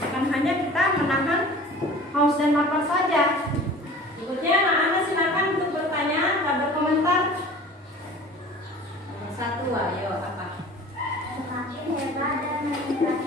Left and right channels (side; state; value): both; normal; correlation 0.43